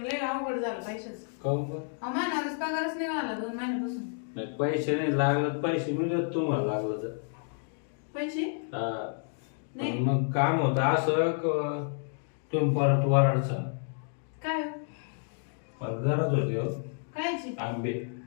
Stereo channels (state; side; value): silent; right; 58 dB below the other